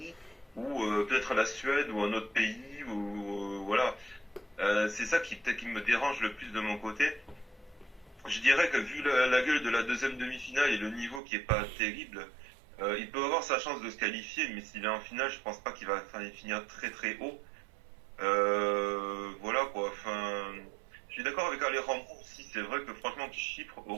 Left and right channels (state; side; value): drops out; left; at 11.2 s